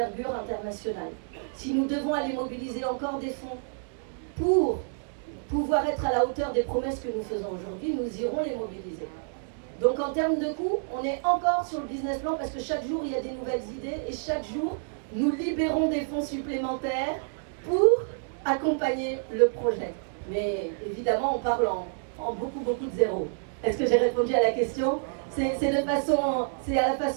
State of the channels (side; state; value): left; silent; digital silence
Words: internationale. Si nous devons aller mobiliser encore des fonds pour pouvoir être à la hauteur des promesses que nous faisons aujourd'hui, nous irons les mobiliser. Donc en termes de coûts, on est encore sur le business plan parce que chaque jour il y a des nouvelles idées et chaque jour nous libérons des fonds supplémentaires pour accompagner le projet. Mais évidemment on parle en beaucoup de zéro. Est-ce que j'ai répondu à la question? C'est à la